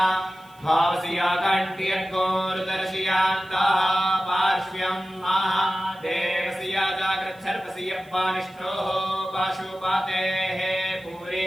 भावसिया कण्ठ्यर्गोरुदर्शयान्तः पार्श्व्यं महादेवसिया जाग्रच्छर्पसियप्पानिष्ठोः पाशुपातेः पूरे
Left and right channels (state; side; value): noise; right; hiss, 29 dB below the sound